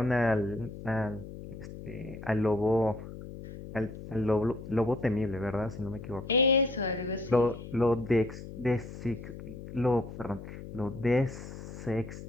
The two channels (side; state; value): left; noise; hum, 12 dB below the sound